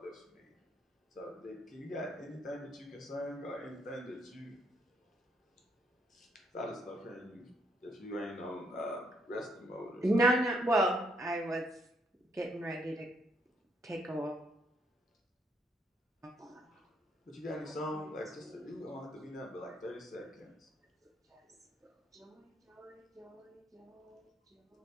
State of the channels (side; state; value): both; normal; correlation 0.72